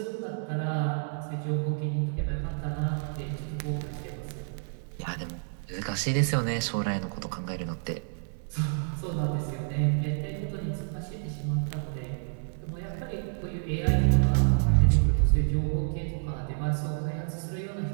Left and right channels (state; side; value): silent; left; digital silence